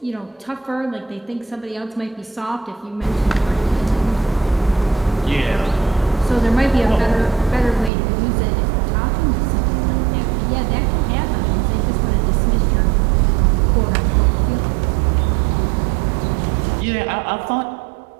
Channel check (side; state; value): left; drops out; at 7.9 s